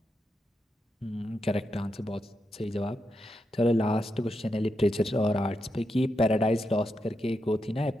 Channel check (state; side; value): normal; both; correlation 0.85